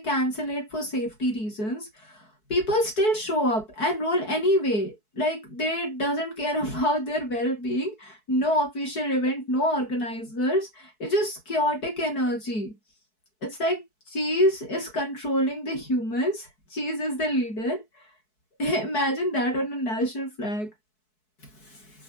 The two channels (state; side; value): late; right; 4.6 ms